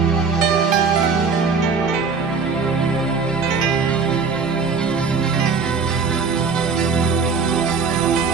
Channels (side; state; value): left; quieter; 5.0 dB